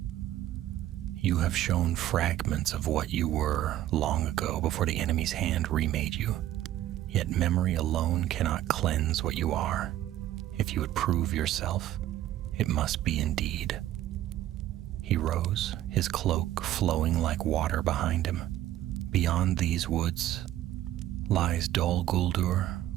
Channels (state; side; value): quieter; left; 13.4 dB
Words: "You have shown fragments of what you were long ago before the enemy's hand remade you. Yet memory alone cannot cleanse what you are. If you would prove yourself, it must be indeed." He rose, his cloak flowing like water behind him. "Beyond these woods lies Dol Guldur,